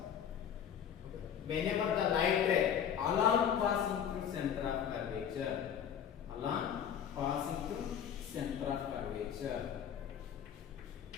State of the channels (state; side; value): quieter; right; 8.6 dB